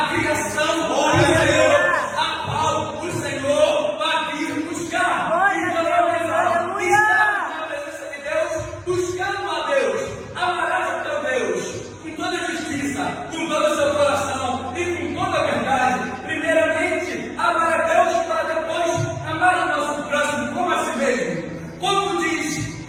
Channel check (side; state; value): both; identical; correlation 1.00